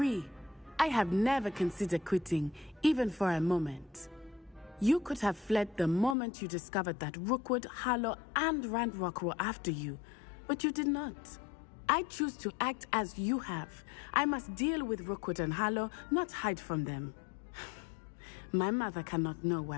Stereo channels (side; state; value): right; drops out; at 6.2 s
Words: I have never considered quitting, even for a moment. You could have fled the moment you discovered that Rookwood, Harlow, and Randrock were after you, but you did not. I choose to act as you have. I must deal with Rookwood and Harlow, not hide from them. My mother cannot know